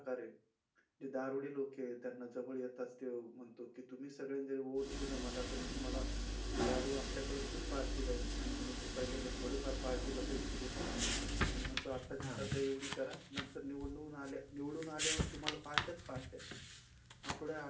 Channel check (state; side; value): identical; both; correlation 1.00